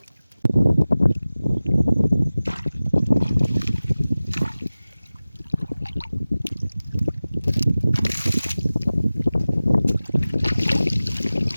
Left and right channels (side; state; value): both; inverted; correlation -0.97